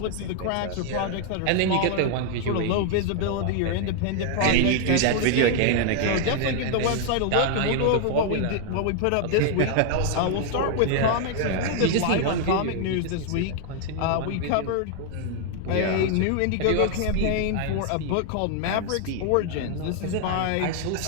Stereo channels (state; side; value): different; both; correlation 0.00